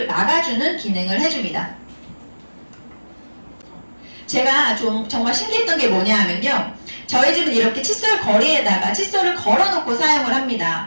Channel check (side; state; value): both; inverted; correlation -1.00